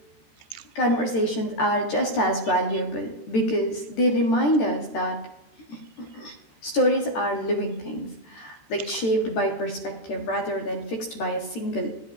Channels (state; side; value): late; right; 13 ms